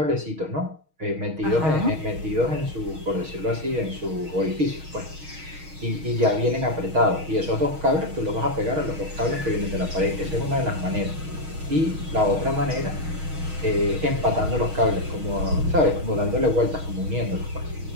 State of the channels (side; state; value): left; late; 6.4 ms